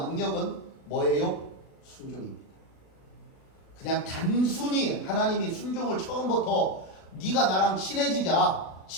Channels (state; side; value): late; right; 37 ms